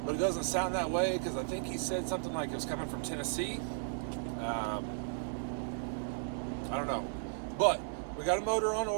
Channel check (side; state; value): left; silent; 54 dB below the other